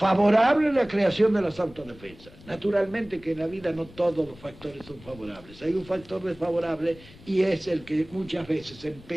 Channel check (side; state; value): left; noise; rumble, 21 dB below the sound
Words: la creación de las autodefensas. Naturalmente que en la vida no todos los factores son favorables. Hay un factor desfavorable y es el que muchas veces